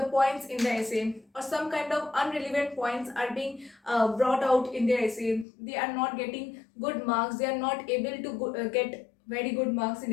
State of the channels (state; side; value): drops out; right; at 5.5 s